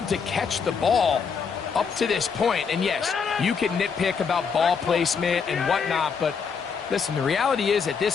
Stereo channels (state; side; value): quieter; right; 6.0 dB